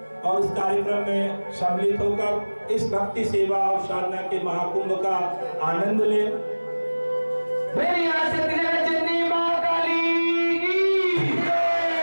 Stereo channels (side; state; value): both; inverted; correlation -1.00